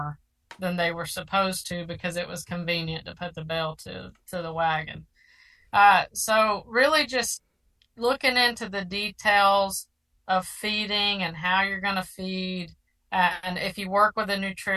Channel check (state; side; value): identical; both; correlation 1.00